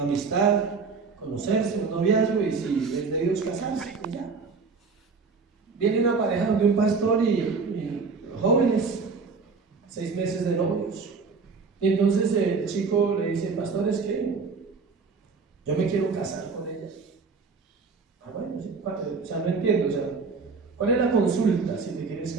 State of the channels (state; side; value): quieter; left; 4.8 dB